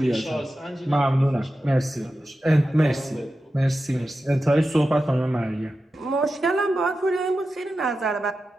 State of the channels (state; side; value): normal; both; correlation 0.92